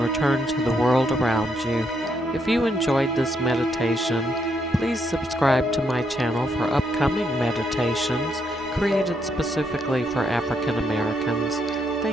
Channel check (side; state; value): both; normal; correlation 0.76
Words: to the world around you. If you enjoyed this meditation, please subscribe to my channel for upcoming meditations created specifically for African Americans.